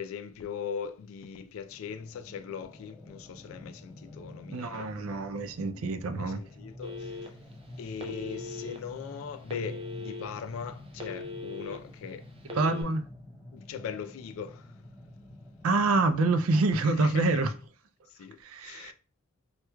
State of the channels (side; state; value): both; normal; correlation 0.48